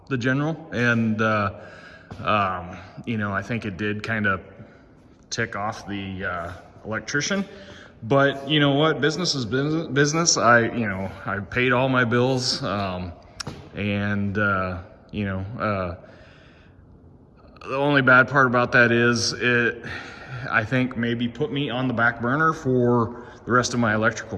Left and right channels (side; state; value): both; identical; correlation 1.00